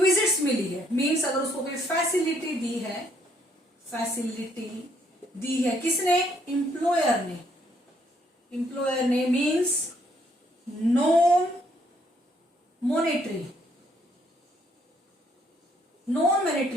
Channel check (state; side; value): normal; both; correlation 0.69